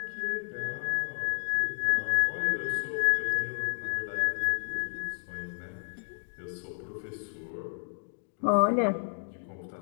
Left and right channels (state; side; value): silent; right; digital silence